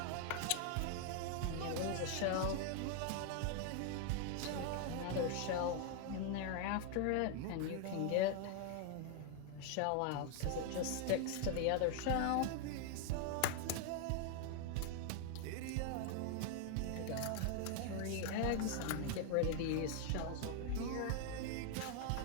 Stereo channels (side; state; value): both; different; correlation 0.00